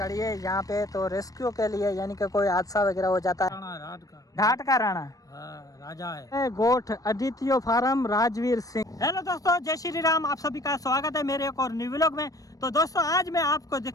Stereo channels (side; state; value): right; late; 0.17 ms